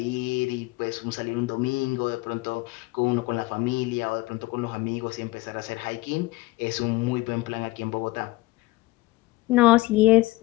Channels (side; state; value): right; quieter; 20.1 dB